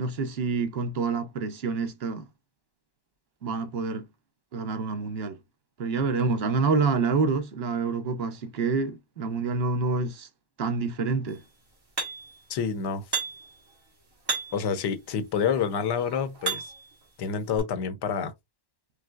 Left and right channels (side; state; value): right; late; 1.1 ms